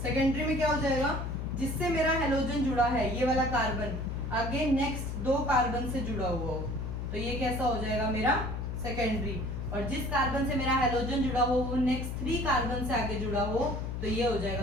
सेकेंडरी में क्या हो जाएगा, जिससे मेरा हेलोजन जुड़ा है ये वाला कार्बन आगे नेक्स्ट 2 कार्बन से जुड़ा हुआ हो तो ये कैसा हो जाएगा मेरा सेकेंडरी, और जिस कार्बन से मेरा हेलोजन जुड़ा हो वो नेक्स्ट 3 कार्बन से आगे जुड़ा हो तो ये हो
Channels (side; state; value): left; noise; hum, 4 dB below the sound